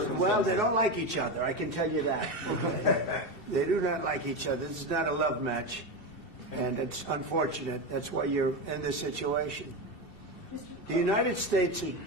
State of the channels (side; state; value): right; late; 2.7 ms